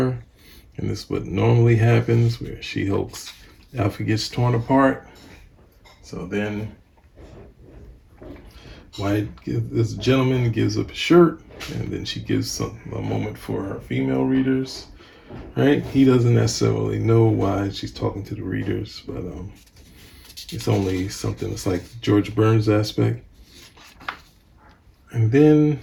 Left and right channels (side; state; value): both; identical; correlation 1.00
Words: And this is what normally happens, where She-Hulk's outfit gets torn apart. So then Wyatt, this gentleman gives up a shirt, and then she gives a moment for her female readers, right? He doesn't necessarily know why she's talking to the readers, but it's only something that's like George Burns aspect. And then